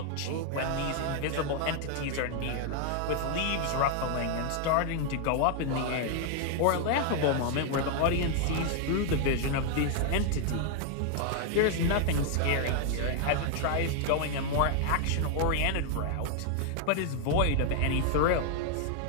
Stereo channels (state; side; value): different; both; correlation 0.00